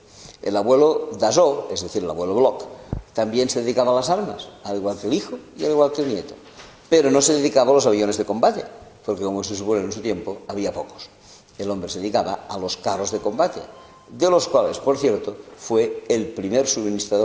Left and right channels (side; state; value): both; identical; correlation 1.00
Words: El abuelo Dassault, es decir, el abuelo Bloch, también se dedicaba a las armas, al igual que el hijo y al igual que el nieto. Pero no se dedicaba a los aviones de combate, porque como se supone en su tiempo, había pocos. El hombre se dedicaba a los carros de combate, de los cuales, por cierto, fue el primer